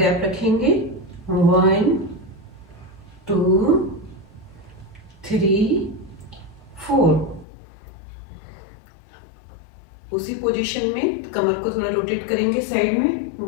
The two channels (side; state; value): right; drops out; at 7.5 s